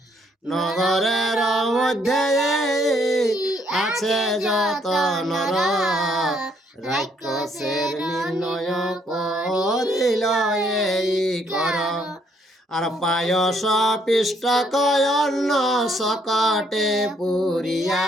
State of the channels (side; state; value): both; normal; correlation 0.69